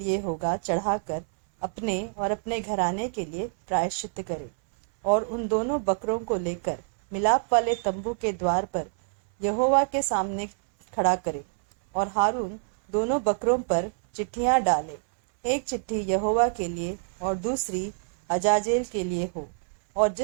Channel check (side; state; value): left; silent; 60 dB below the other